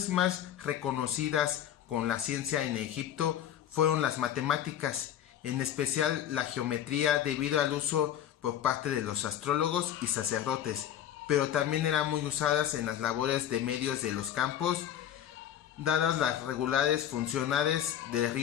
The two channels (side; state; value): right; quieter; 10.7 dB